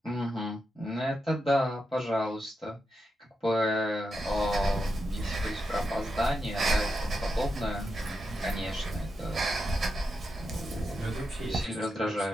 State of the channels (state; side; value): normal; both; correlation 0.87